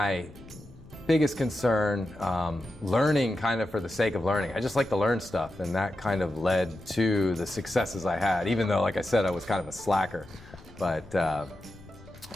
biggest concern. Learning kind of for the sake of learning. I just like to learn stuff, and that kind of led to the successes I had, even though, like I said, I was kind of a slacker. But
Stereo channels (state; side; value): noise; left; rumble, 20 dB below the sound